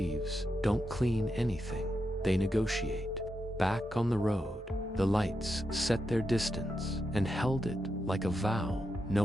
don't clean anything, they negotiate. Back on the road, the lights set their distance and held it like a vow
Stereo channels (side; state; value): both; normal; correlation 0.86